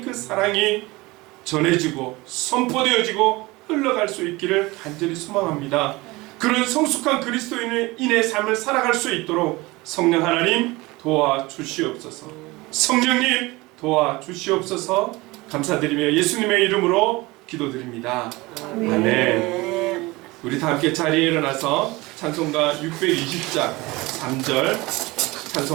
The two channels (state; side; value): quieter; left; 22.0 dB